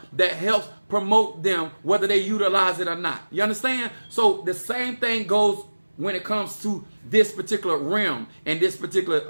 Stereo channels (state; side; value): inverted; both; correlation -1.00